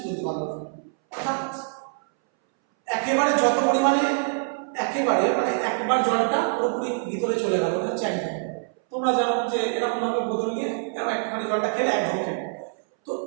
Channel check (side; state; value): left; silent; 62 dB below the other